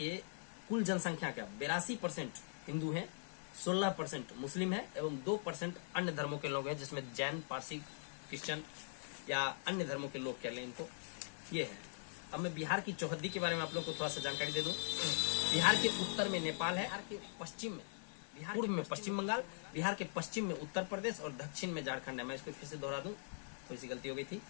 कुल जनसंख्या का 82% हिंदू हैं, 16% मुस्लिम है एवं 2% अन्य धर्मों के लोग हैं, जिसमें जैन, पारसी, क्रिश्चियन या अन्य धर्मों के लोग कह लें इनको। ये है। अब मैं बिहार की चौहद्दी के बारे में आप लोग को थोड़ा सा जानकारी दे दूं। बिहार के उत्तर में नेपाल है, बिहार के पश्चिम में, पूर्व में पश्चिम बंगाल, बिहार के पश्चिम में उत्तर प्रदेश और दक्षिण में झारखंड है। मैं इसको फिर से दोहरा दूं, थोड़ी सी गलती हो गई थी।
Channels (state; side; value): silent; right; digital silence